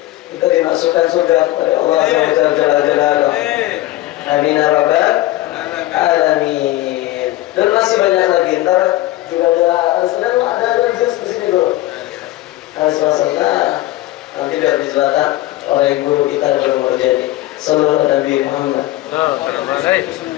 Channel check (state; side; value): quieter; right; 16.7 dB